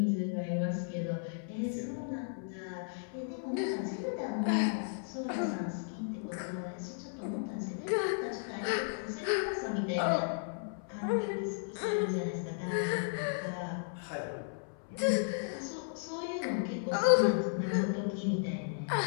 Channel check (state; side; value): silent; right; 55 dB below the other